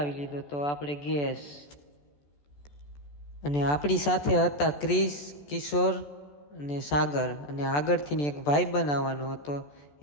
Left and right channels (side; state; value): right; late; 14 ms